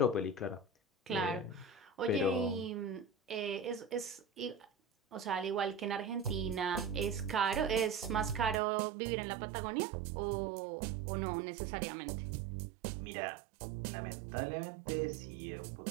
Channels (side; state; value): left; drops out; at 8.6 s